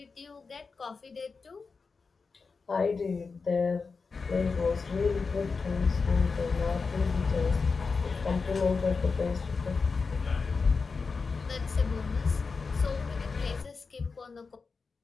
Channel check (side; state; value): right; quieter; 4.7 dB